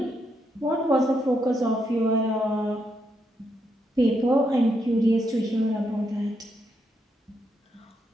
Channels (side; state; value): both; normal; correlation 0.79